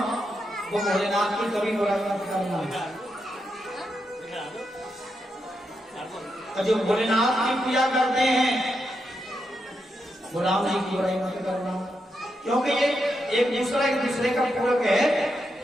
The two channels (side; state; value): both; normal; correlation 0.84